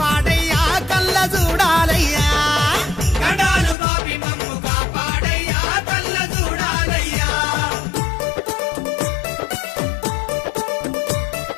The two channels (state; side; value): drops out; right; at 3.8 s